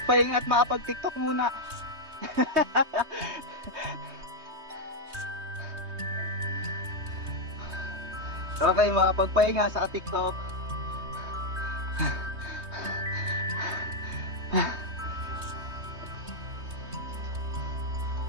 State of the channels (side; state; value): left; late; 3.2 ms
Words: at makapag-tiktok muna. Okay, makapagpahinga sa tiktok.